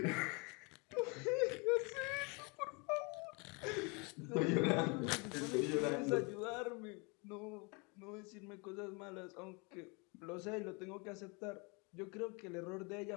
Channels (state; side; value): quieter; right; 30.4 dB